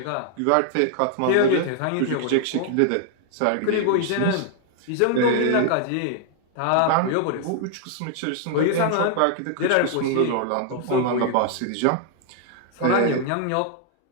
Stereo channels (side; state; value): both; different; correlation 0.00